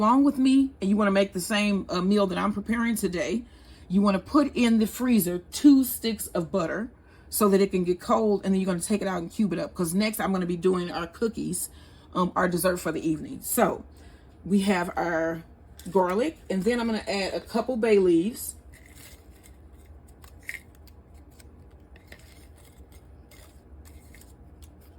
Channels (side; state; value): both; identical; correlation 1.00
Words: with me and you want to make the same meal that I'm preparing today, you want to put in the freezer 2 sticks of butter so that it can get cold. And then you're going to take it out and cube it up. Because next I'm going to be doing our cookies, our dessert for the evening. So we have our garlic. And then I'm going to add a couple bay leaves.